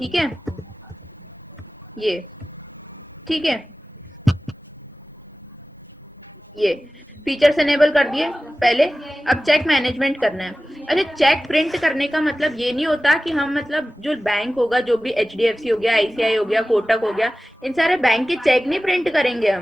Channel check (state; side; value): normal; both; correlation 0.96